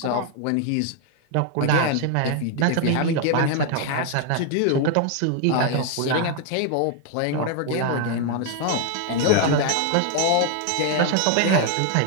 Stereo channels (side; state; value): both; different; correlation 0.00